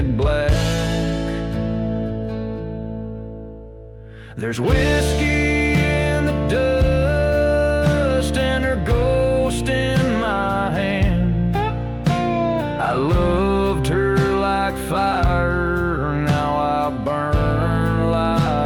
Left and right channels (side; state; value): both; identical; correlation 1.00